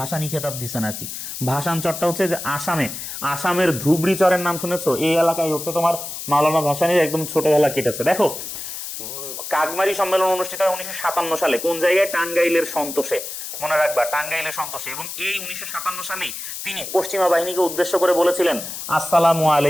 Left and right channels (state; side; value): noise; left; hiss, 8 dB below the sound